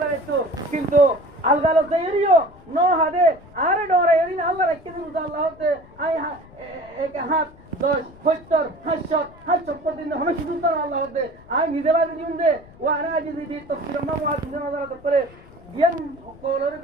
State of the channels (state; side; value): noise; left; rumble, 23 dB below the sound